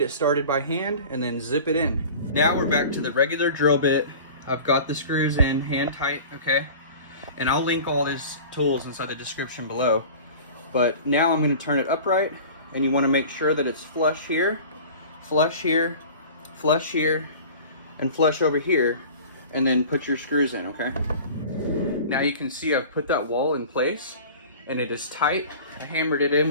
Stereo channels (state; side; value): inverted; both; correlation -0.40